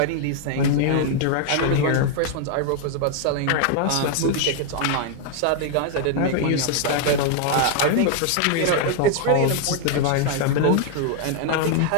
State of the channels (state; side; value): different; both; correlation 0.00